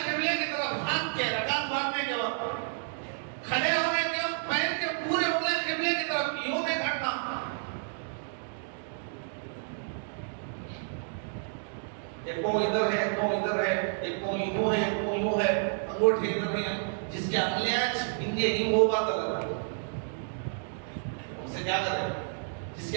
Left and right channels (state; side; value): silent; left; digital silence